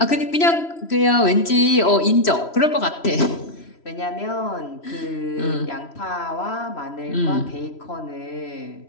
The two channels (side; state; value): right; late; 3.0 ms